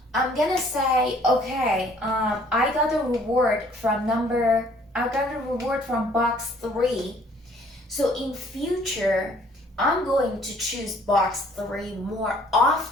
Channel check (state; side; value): normal; both; correlation 0.58